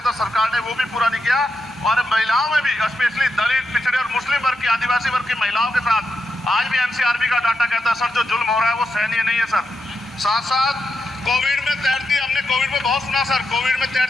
था सरकार ने वो भी पूरा नहीं किया। और महिलाओं में भी, स्पेशली दलित, पिछड़े और मुस्लिम वर्ग की, आदिवासी वर्ग की महिलाओं के साथ आज भी NCRB का डाटा कहता है सर जो जुल्म हो रहा है वो सहनीय नहीं है सर। साथ साथ कोविड में तैरती, हमने कोविड में बहुत सुना सर, कोविड में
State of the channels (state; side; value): normal; both; correlation 0.85